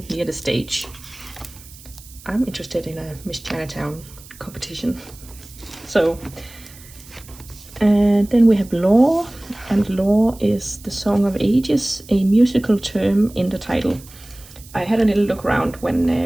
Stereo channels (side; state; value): right; noise; hiss, 21 dB below the sound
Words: near the stage. I'm interested in a Miss Chinatown competition. So, and then we have Law, and Law is the Song of Ages, a musical term in the title. I had a little look around